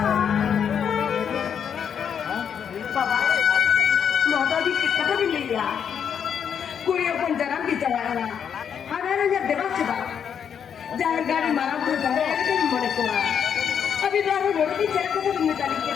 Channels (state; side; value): quieter; right; 7.8 dB